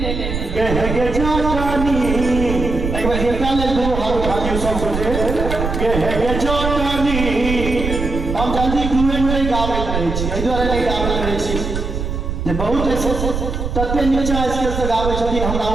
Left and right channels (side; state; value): right; noise; rumble, 4 dB below the sound